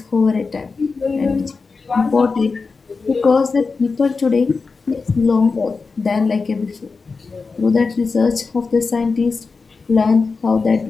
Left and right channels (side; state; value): right; quieter; 4.5 dB